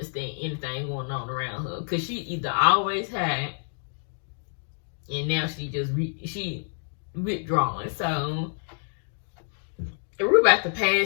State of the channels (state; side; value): silent; right; digital silence